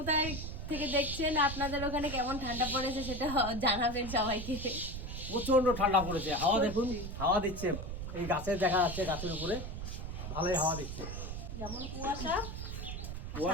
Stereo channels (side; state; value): right; noise; rumble, 7 dB below the sound